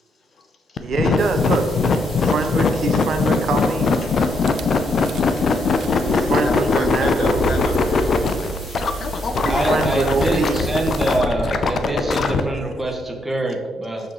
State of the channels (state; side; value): normal; both; correlation 0.75